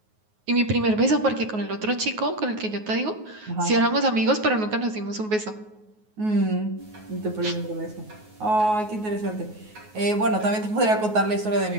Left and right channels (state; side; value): late; left; 9.4 ms